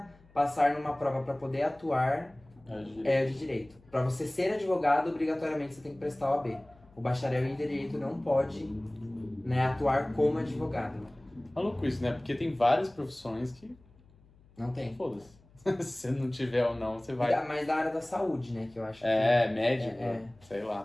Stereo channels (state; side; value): noise; left; hum, 28 dB below the sound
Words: passar numa prova para poder atuar é o de direito. Para você ser advogado, obrigatoriamente você tem que prestar o OAB. O bacharel em direito não pode, né, atuar como advogado. Maluco isso, né? Porque tem várias profissões que... Não tem. Foda-se. Se você não tiver ou não, você vai... Mas da área da saúde, né, que eu acho médico, sei